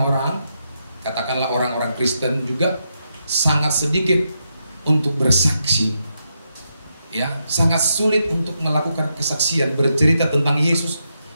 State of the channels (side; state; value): both; inverted; correlation -0.83